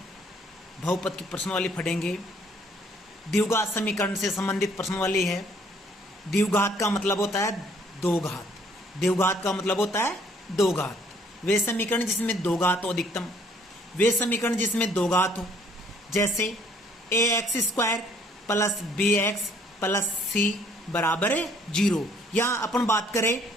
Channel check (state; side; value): normal; both; correlation 0.63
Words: बहुपद की प्रश्न वाली पढ़ेंगे। द्विघात समीकरण से संबंधित प्रश्न वाली है। द्विघात का मतलब होता है दो घात। द्विघात का मतलब होता है दो घात। वे समीकरण जिसमें दो घात हो अधिकतम, वे समीकरण जिसमें दो घात हो, जैसे ax² plus bx plus c बराबर है 0। यहां अपन बात करें